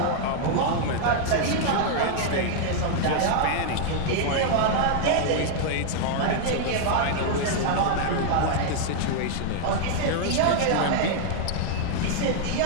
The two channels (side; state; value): both; different; correlation 0.00